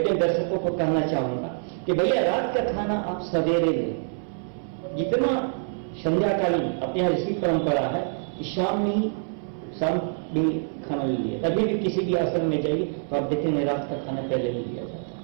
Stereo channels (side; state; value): left; silent; 60 dB below the other